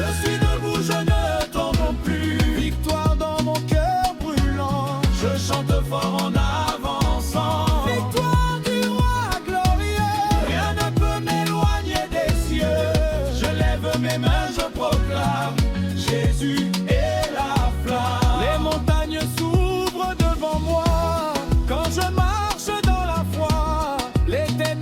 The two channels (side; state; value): both; identical; correlation 1.00